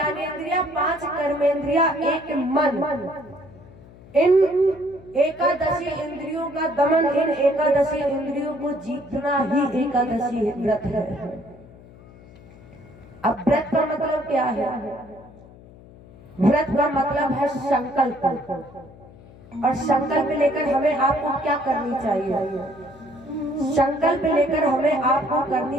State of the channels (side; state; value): left; noise; hum, 21 dB below the sound